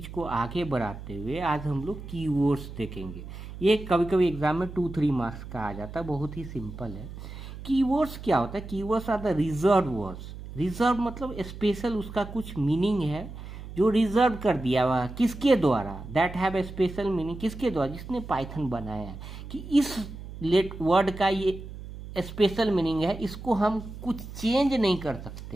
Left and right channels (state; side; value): noise; right; hum, 12 dB below the sound